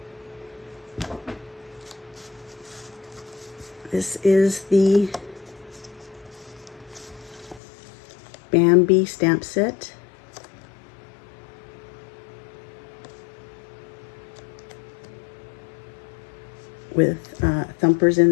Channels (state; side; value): drops out; right; at 7.6 s